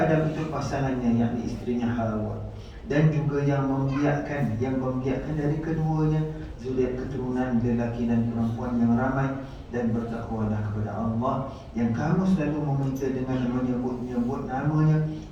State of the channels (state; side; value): identical; both; correlation 1.00